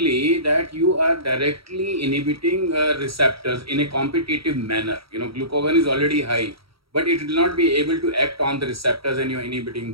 that you are directly inhibiting receptors in a competitive manner. You know, glucagon is already high, but it will not be able to act on the receptors and you're inhibiting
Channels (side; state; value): left; late; 0.75 ms